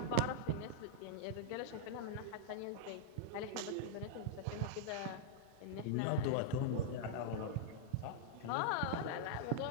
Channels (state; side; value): different; both; correlation -0.01